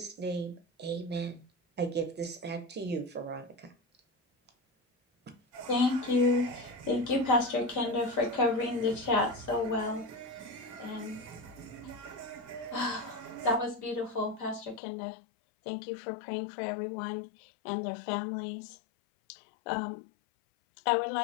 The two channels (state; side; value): drops out; right; at 14.8 s